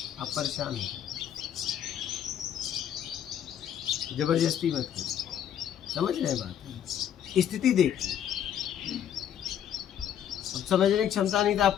आप परेशान हो जाए, जबरदस्ती मत करिए। समझ रहे हैं बात? स्थिति देखिए। अब समझने की क्षमता नहीं तो आप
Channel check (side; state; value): right; quieter; 9.8 dB